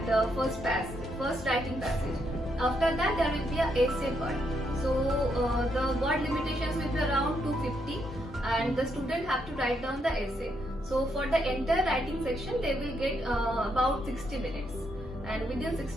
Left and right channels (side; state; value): both; normal; correlation 0.77